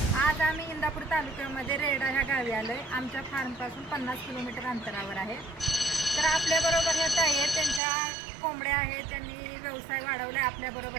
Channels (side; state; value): left; drops out; at 7.8 s